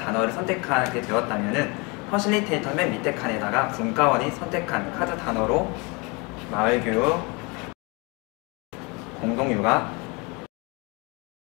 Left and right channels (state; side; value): quieter; right; 28.7 dB